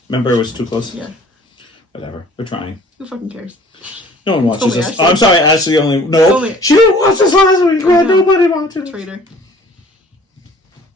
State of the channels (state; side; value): normal; both; correlation 0.51